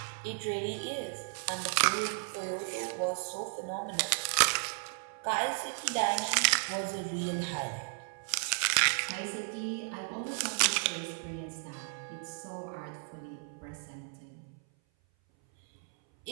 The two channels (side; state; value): left; silent; 55 dB below the other